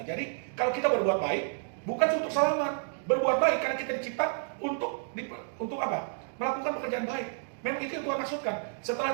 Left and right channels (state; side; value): silent; left; digital silence